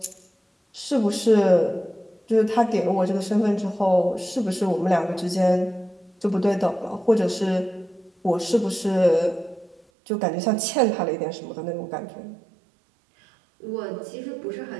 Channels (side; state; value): left; drops out; at 9.9 s